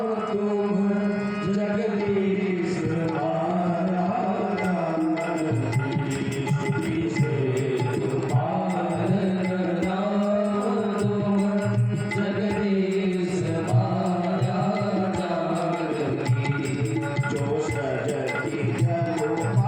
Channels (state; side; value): identical; both; correlation 1.00